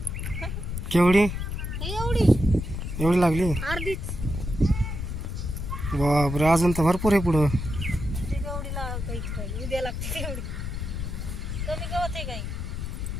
केवढी? एवढी लागली? अर्धीच। बापरे, अजून तर भरपूर आहे पुढं। उद्या लागते एवढी, कमी गवत आहे काही।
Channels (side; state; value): left; noise; rumble, 4 dB below the sound